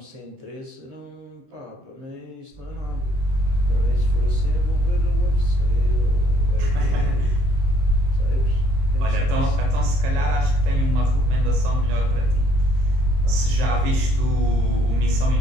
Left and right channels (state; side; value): late; left; 23 ms